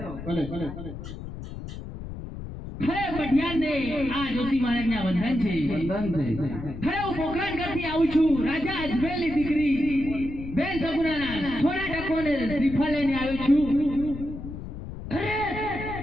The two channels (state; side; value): noise; left; rumble, 10 dB below the sound